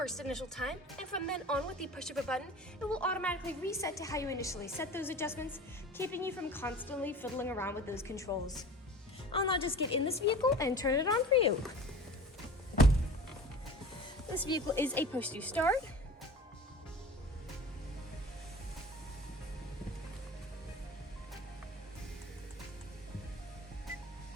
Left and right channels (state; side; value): normal; both; correlation 0.39